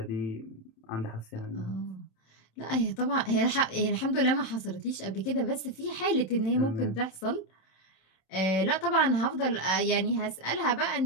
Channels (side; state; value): right; late; 27 ms